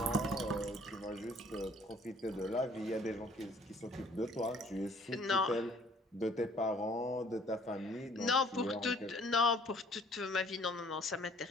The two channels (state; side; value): normal; both; correlation 0.57